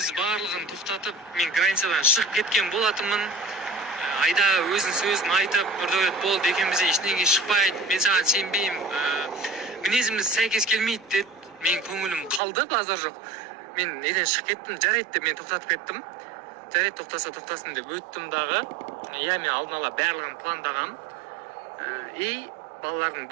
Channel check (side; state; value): left; drops out; at 12.4 s